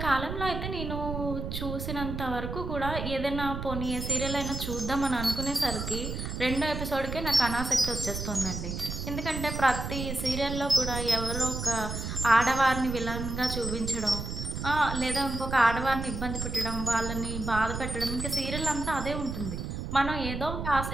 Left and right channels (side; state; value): right; noise; rumble, 5 dB below the sound